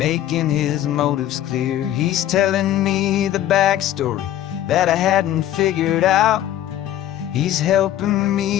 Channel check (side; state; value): right; quieter; 12.4 dB